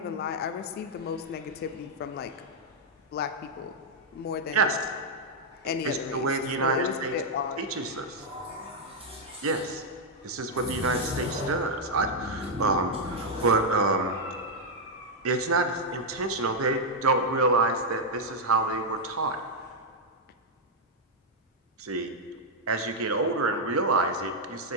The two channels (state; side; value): normal; both; correlation -0.02